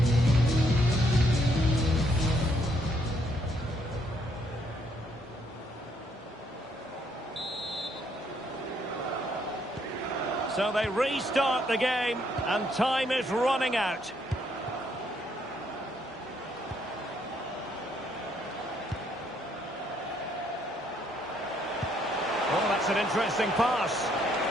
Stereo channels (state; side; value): normal; both; correlation 0.71